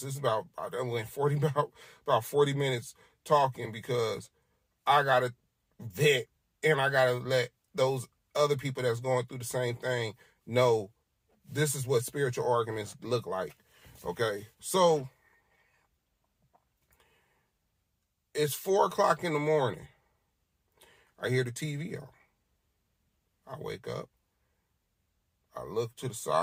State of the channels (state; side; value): identical; both; correlation 1.00